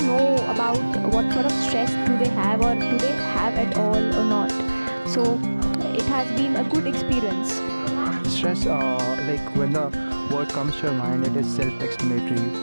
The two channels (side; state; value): both; inverted; correlation -1.00